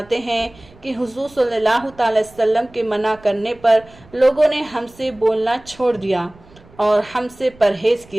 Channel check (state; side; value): noise; right; rumble, 25 dB below the sound